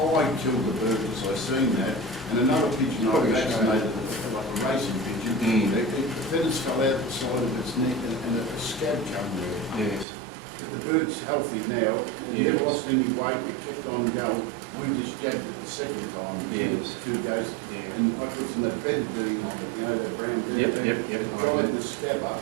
killed the bird because I seen that, and another pigeon I Probably vaccinated, like a racing pigeon. The feathers fell out the side of its neck, and a scab come there. Yes. But the bird's healthy now, it Yes. never lost any weight, it kept on going. We just jabbed it the second time, Yes. 2 days, Yeah. and I put some of that betadine on it, you know, that brown Yep, betadine. yep, yep. It dried the scab up,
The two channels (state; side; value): drops out; left; at 10.1 s